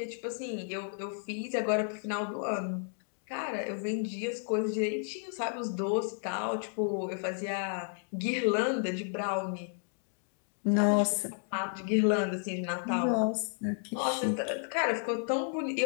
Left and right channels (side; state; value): right; silent; 56 dB below the other